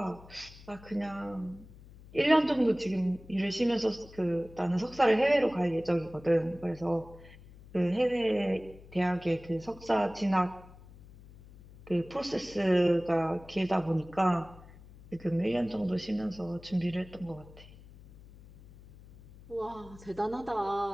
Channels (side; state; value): left; noise; hum, 20 dB below the sound